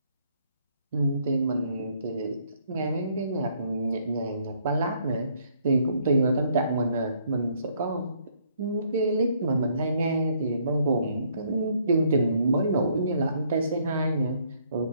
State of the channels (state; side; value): inverted; both; correlation -0.67